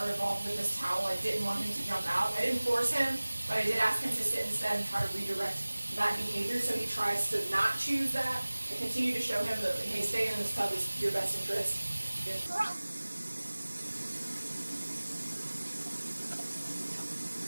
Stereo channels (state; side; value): inverted; both; correlation -1.00